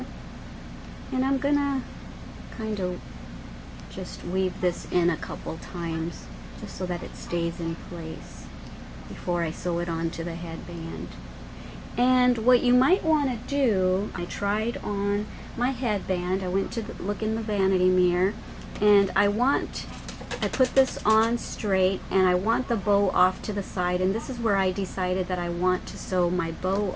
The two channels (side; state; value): both; identical; correlation 1.00